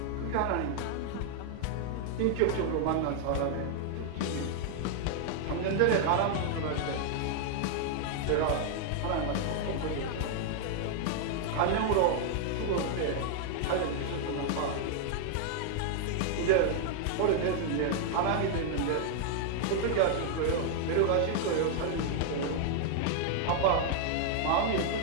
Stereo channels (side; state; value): both; different; correlation 0.00